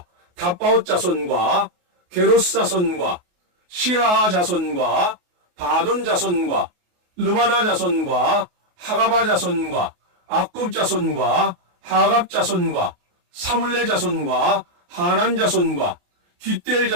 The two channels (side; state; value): left; late; 28 ms